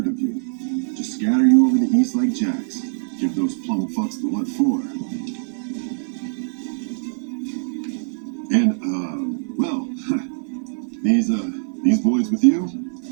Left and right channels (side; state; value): left; silent; 64 dB below the other